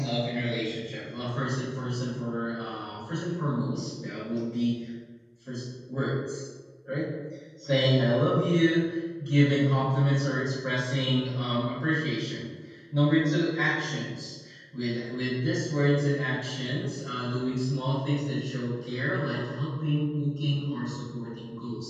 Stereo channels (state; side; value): identical; both; correlation 1.00